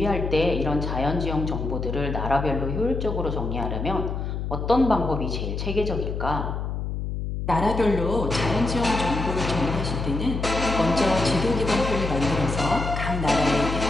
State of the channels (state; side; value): noise; left; hum, 3 dB below the sound